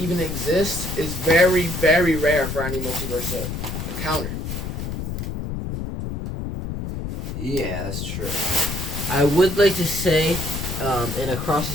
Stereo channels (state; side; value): noise; left; rumble, 5 dB below the sound